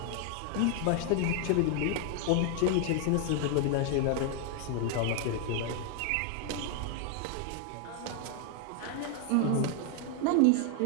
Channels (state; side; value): different; both; correlation 0.00